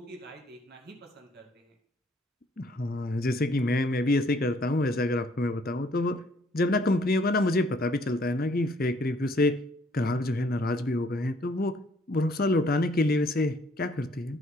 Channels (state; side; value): normal; both; correlation 0.63